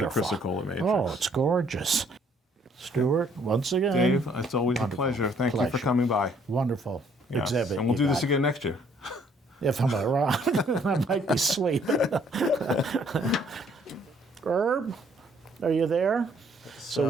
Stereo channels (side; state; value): both; normal; correlation 0.64